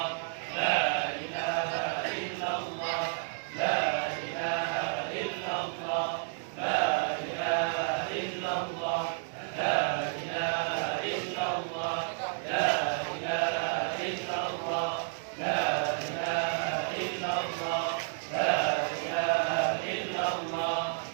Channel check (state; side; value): silent; left; 57 dB below the other